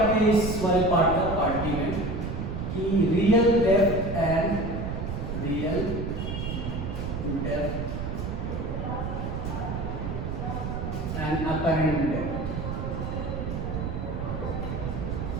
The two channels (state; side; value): noise; right; rumble, 4 dB below the sound